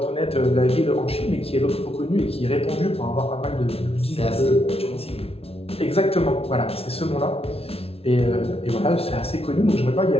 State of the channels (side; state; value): right; late; 0.29 ms